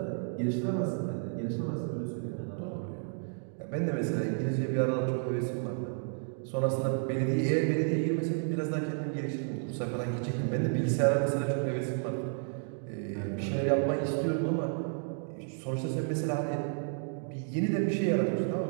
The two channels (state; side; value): silent; left; 57 dB below the other